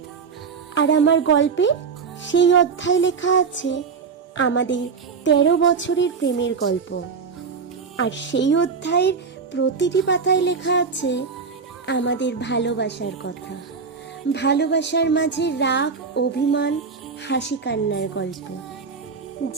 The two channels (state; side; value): quieter; left; 5.4 dB